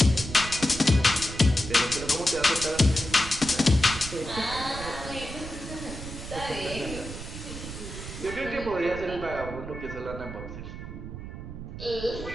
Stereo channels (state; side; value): noise; right; rumble, 10 dB below the sound